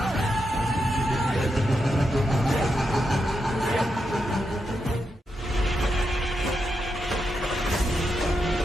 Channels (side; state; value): both; normal; correlation 0.85